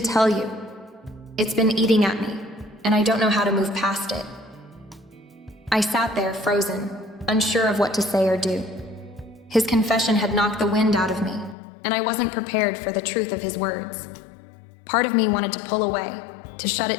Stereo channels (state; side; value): drops out; right; at 11.6 s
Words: tell you. It's been eating at me, and I don't know how to move past it." I sat there, frozen, unsure of what to say or do. His confession had knocked the wind out of me, and I wasn't prepared for the truth of his words. Part of me wanted to pull away, to shut